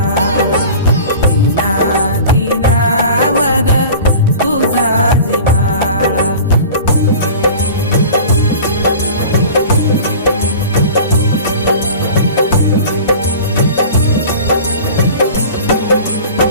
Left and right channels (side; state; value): both; inverted; correlation -0.38